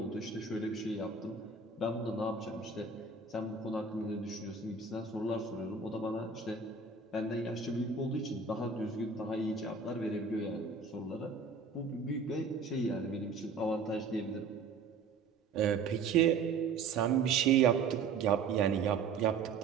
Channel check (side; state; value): left; quieter; 4.8 dB